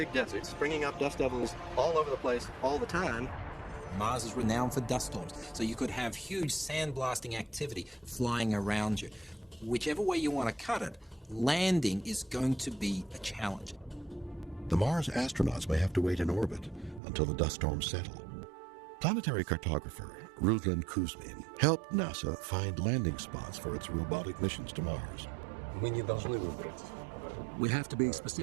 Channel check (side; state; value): left; drops out; at 17.0 s